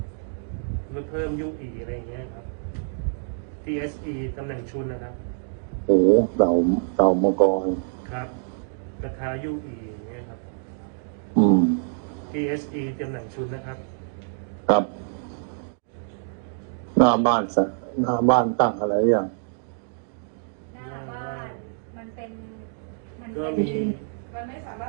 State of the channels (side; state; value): left; silent; digital silence